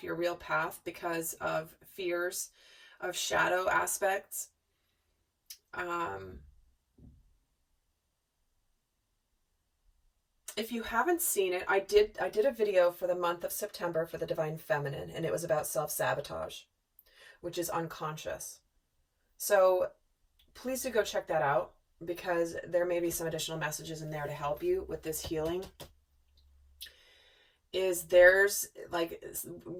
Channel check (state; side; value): identical; both; correlation 1.00